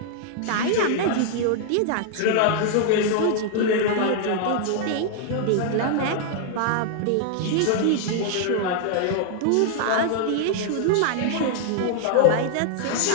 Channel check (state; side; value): different; both; correlation 0.00